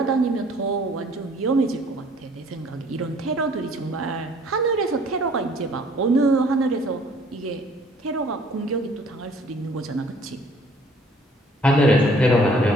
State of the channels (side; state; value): both; normal; correlation 0.57